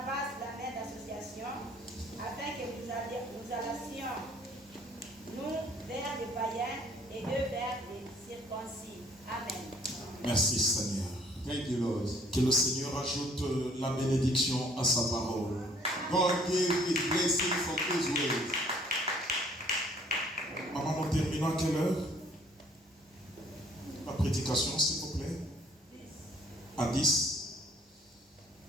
la main d'association, afin que nous allassions, nous vers les païens et eux vers les circoncis. Amen. Merci Seigneur. Thank you, Lord. Que le Seigneur ajoute la bénédiction à sa parole. God gave his blessing from his word. Maman, nous terminons à quelle heure? La prédication, s'il vous plaît. À 10.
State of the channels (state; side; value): normal; both; correlation 0.59